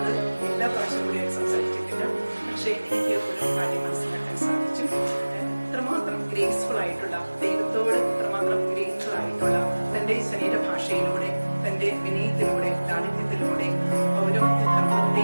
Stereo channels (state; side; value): inverted; both; correlation -1.00